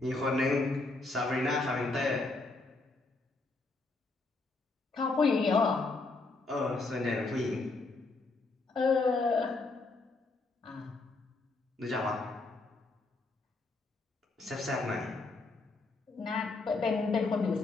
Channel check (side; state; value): right; quieter; 3.5 dB